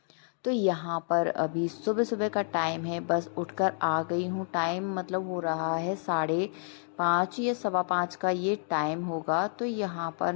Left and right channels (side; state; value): right; silent; digital silence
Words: तो यहाँ पर अभी सुबह सुबह का टाइम है, बस उठकर आ गई हूँ। टाइम मतलब हो रहा है 5:30 या 5:15 का ये टाइम होगा। तो यहाँ पर